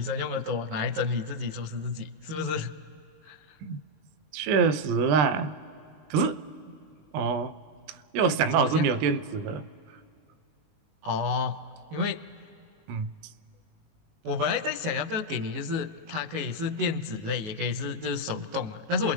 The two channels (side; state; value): left; late; 20 ms